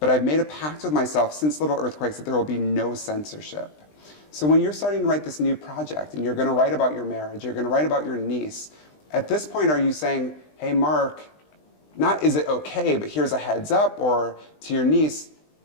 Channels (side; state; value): right; late; 20 ms